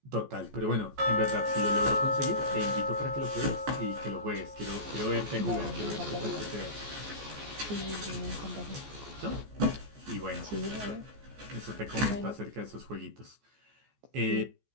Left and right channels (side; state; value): left; late; 14 ms